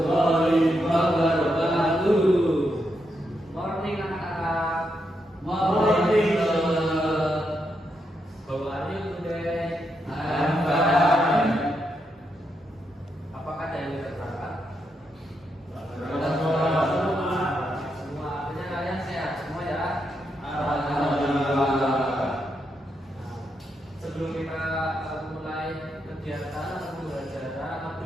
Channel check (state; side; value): normal; both; correlation 0.82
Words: wabarakatuh. Morning anak-anak. Morning. How are you today? I'm fine. Apakah ada yang berangkat? Semua. Artinya kalian sehat semua ya? Alhamdulillah. Sebelum kita mulai kegiatan atau belajar